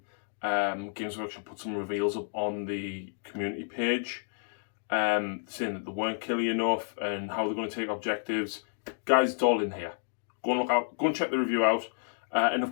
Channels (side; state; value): right; silent; digital silence